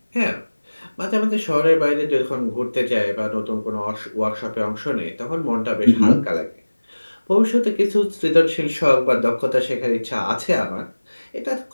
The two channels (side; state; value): both; inverted; correlation -1.00